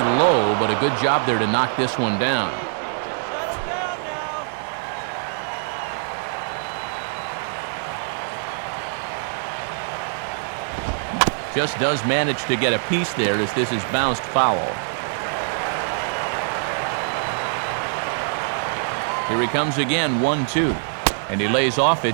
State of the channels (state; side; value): silent; left; digital silence